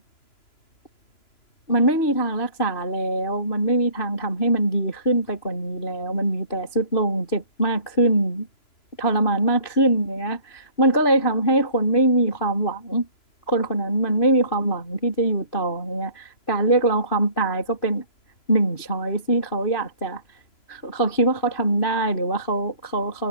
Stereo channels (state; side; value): late; right; 3.0 ms